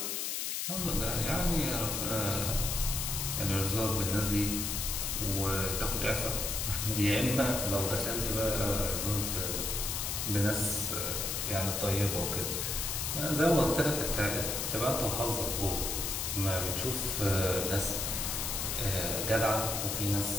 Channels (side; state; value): left; noise; hiss, 1 dB below the sound